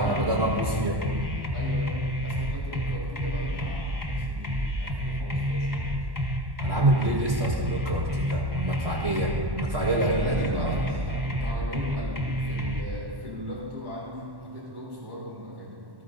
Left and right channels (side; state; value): left; late; 1.1 ms